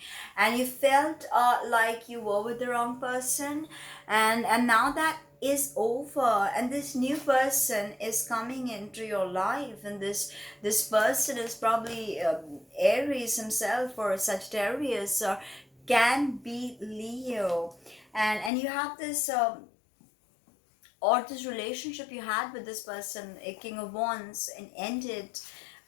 and you felt like you were with the wrong person, and now that is over, and this new person is coming into your life, and this person is probably Aries himself, or Sagittarius, or can be Leo. And you have this or this relationship you had with this person, a King of Wands, and ended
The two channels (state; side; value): drops out; right; at 18.5 s